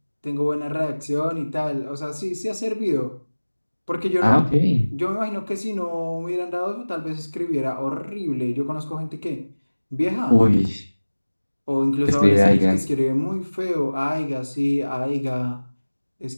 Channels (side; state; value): both; inverted; correlation -1.00